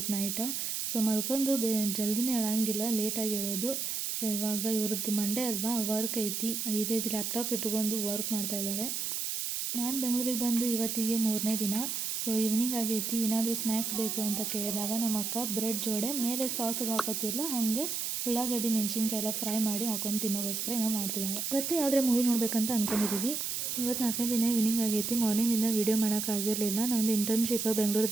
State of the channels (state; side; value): noise; right; hiss, 2 dB below the sound